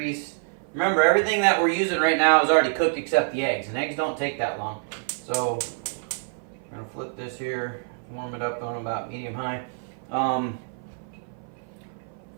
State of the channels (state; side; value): silent; left; 56 dB below the other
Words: Remember, everything that we're using right now is already cooked except the eggs, and eggs don't take that long. So I'm going to flip this here, warm it up on about medium-high.